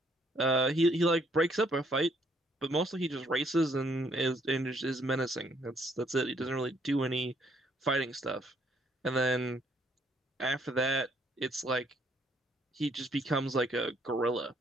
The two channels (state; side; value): normal; both; correlation 0.67